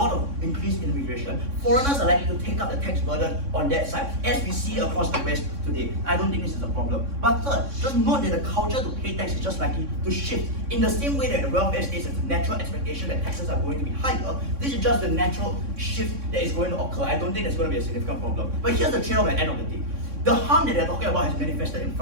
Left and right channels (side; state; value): left; late; 3.6 ms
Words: of increased immigration, foreigners are likely to take up the tax burden on that side, as we see across the West today. I don't think this is a problem. But third, just note that the culture to pay tax is just likely to shift. In the same way that the welfare state is a natural expectation that taxes are going to be higher, this is just the natural shift that is going to occur. I don't think there's going to be a significant problem. But here's the trade-off at the end of the day. The harm that they're talking about has manifested in